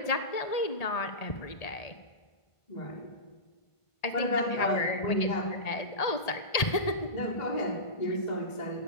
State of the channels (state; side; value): late; right; 1.8 ms